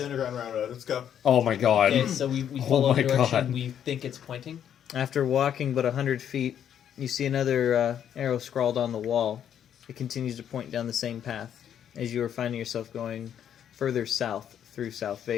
underground railroad. Let's go. Oh my god. Okay, so we Oh follow my the direction God. we think it's pointing. After walking but 100 feet, you see another arrow scrawled on the wall. It continues to point down the same path as you are finding yourself going further south through South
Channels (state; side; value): quieter; right; 9.4 dB